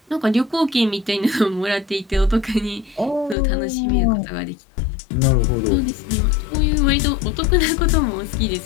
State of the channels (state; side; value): drops out; right; at 3.4 s